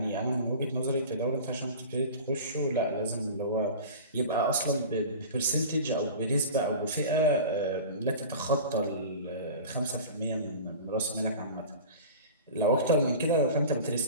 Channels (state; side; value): inverted; both; correlation -0.36